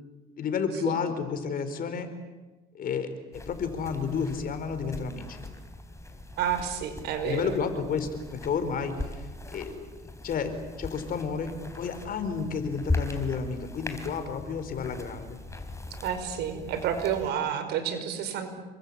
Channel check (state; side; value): normal; both; correlation 0.33